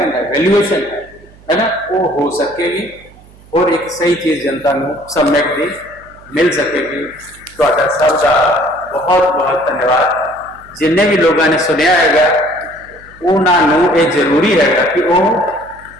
है वैल्यूएशन है ना वो हो सकेगी और एक सही चीज जनता को सम्यक दी मिल सकेगी तो सबका बहुत बहुत धन्यवाद जिन्हें भी लोगों ने सुनिया है उन्होंने ये जरूरी है कि वो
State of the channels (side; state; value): right; noise; hum, 25 dB below the sound